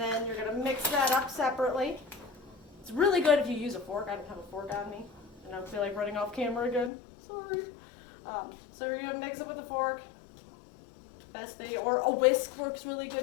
you're going to mix that up separately. It's really good if you use a fork. I don't have a fork on me, and I don't feel like running off camera again. Sorry. So you're going to mix it with a fork. Best thing, or a whisk works really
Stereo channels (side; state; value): right; drops out; at 6.9 s